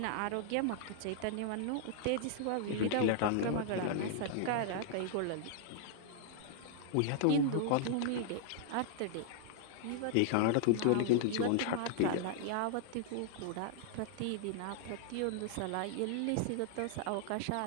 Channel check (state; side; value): different; both; correlation -0.01